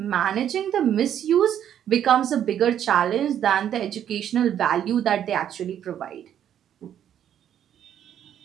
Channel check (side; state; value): left; quieter; 10.0 dB